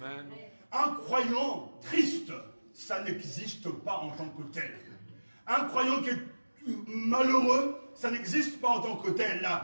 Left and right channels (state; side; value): inverted; both; correlation -1.00